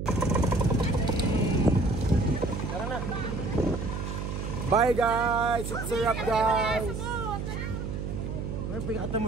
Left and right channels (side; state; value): right; noise; hum, 4 dB below the sound